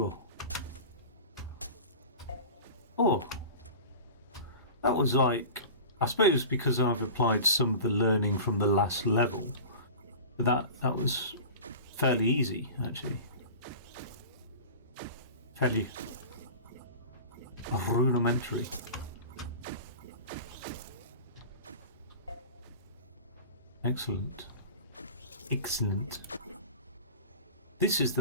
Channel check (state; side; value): inverted; both; correlation -0.36